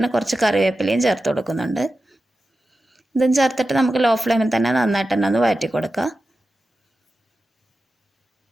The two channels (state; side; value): normal; both; correlation 0.93